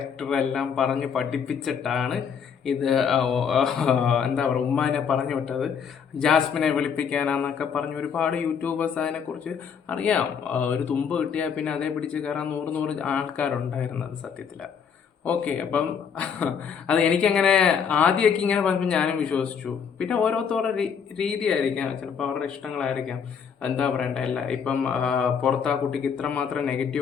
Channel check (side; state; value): right; quieter; 7.0 dB